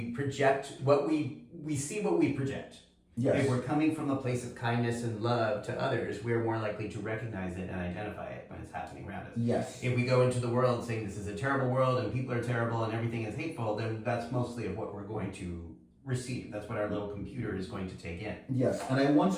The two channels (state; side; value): identical; both; correlation 1.00